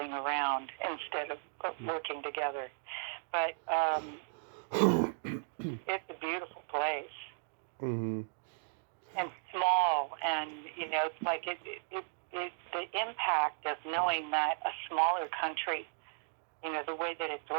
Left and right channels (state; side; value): silent; left; digital silence